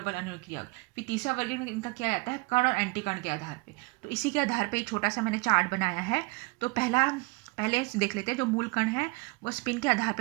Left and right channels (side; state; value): left; quieter; 26.9 dB